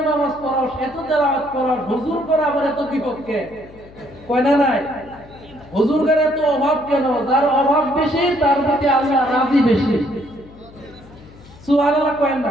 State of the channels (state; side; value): noise; left; hum, 22 dB below the sound